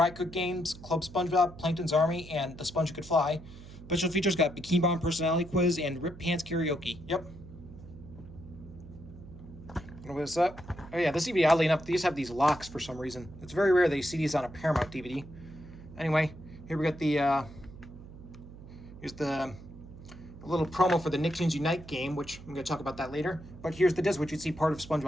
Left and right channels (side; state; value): right; noise; hum, 16 dB below the sound